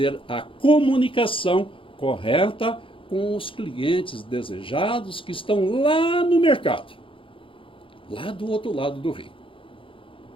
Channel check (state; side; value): late; right; 0.25 ms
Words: a comunicação correta com os clientes desejados que estão lá no mercado, lá do outro lado do rio.